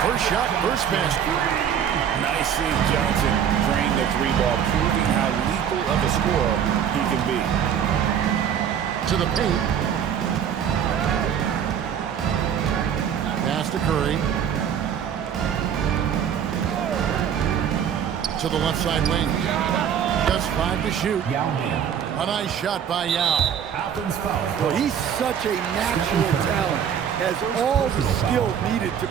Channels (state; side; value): quieter; left; 8.5 dB